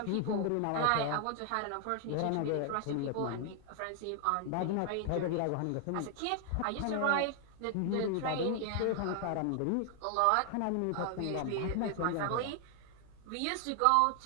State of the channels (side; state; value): both; different; correlation 0.00